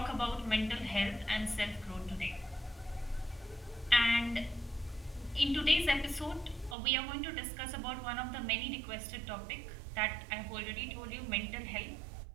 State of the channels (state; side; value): drops out; left; at 6.8 s